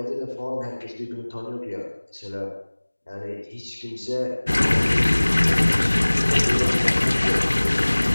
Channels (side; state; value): both; inverted; correlation -1.00